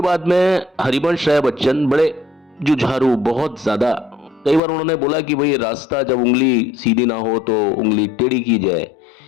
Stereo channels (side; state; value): right; drops out; at 4.6 s